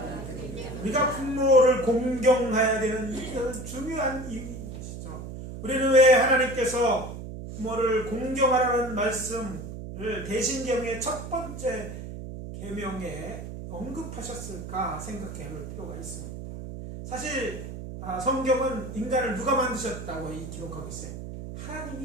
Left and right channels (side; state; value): right; noise; hum, 9 dB below the sound